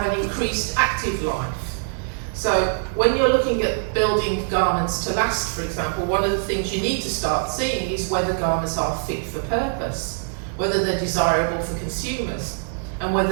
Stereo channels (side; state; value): left; silent; digital silence